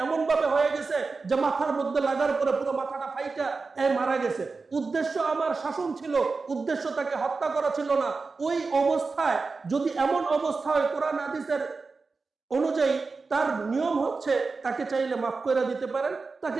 এমন ভাবে হয়ে গেছে যে মাথার মধ্যে লাগার পরে পুরো মাথাটা ফাইটা মারা গেছে। উদ্দেশ্য আমার শাসন ছিল, উদ্দেশ্য তাকে হত্যা করা ছিল না। ওই অবস্থায় যদি এমন অবস্থা হয়, কোরআন হাদিসের অনুযায়ী তার নিয়ম হচ্ছে তাকে চাইলে মাফ করে দিতে পারেন,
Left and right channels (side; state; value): left; quieter; 4.2 dB